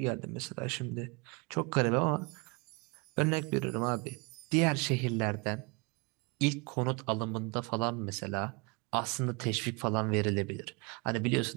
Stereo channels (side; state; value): left; quieter; 30.0 dB